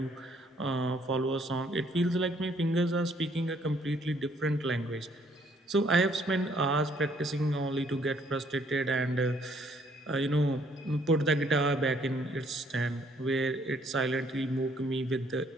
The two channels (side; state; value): both; normal; correlation 0.65